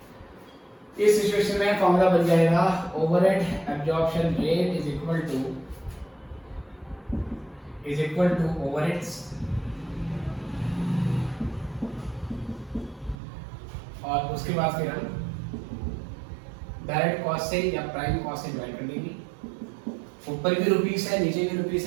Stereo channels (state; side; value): drops out; left; at 13.2 s